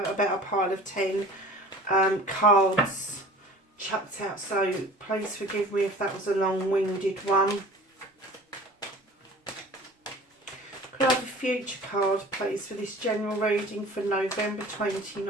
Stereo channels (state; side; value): normal; both; correlation 0.44